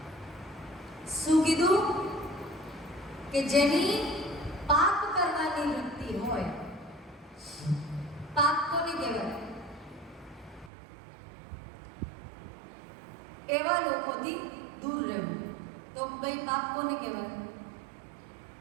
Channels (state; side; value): drops out; left; at 10.7 s